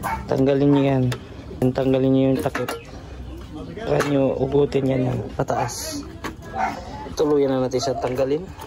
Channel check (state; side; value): identical; both; correlation 1.00